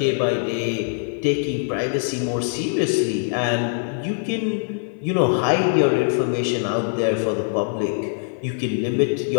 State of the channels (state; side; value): silent; right; 55 dB below the other